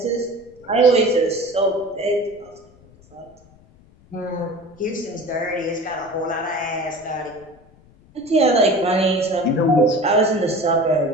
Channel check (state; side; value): noise; left; rumble, 27 dB below the sound